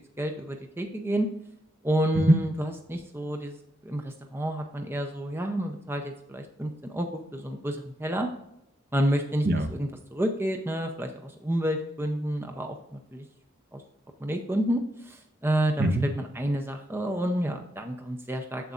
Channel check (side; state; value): both; normal; correlation 0.83